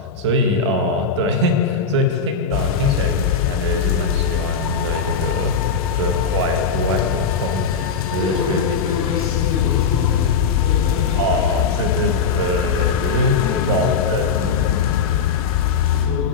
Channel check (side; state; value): right; quieter; 5.2 dB